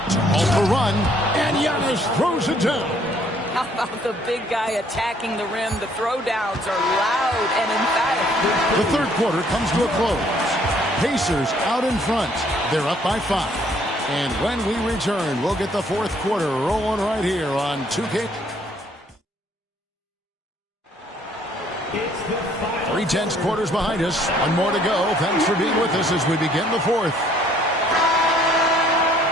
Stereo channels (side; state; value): both; normal; correlation 0.63